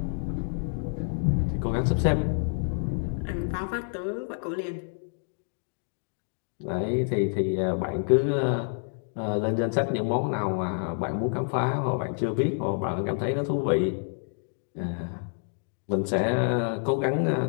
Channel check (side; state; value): right; silent; 59 dB below the other